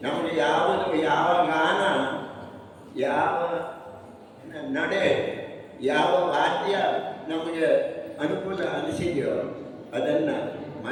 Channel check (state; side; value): identical; both; correlation 1.00